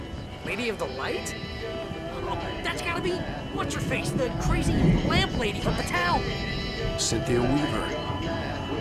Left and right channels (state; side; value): identical; both; correlation 1.00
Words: Lady of the Light? Oh, that's gotta be what's-her-face, the crazy lamp lady from the town. Cynthia Weaver.